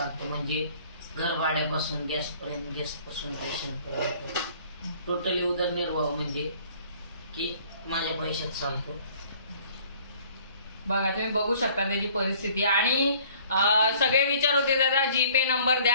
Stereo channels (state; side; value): inverted; both; correlation -0.55